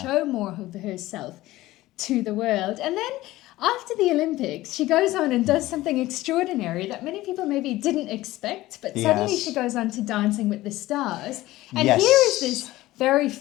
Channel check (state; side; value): quieter; right; 17.1 dB